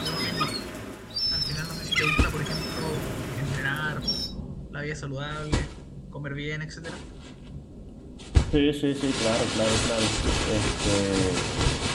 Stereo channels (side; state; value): both; identical; correlation 1.00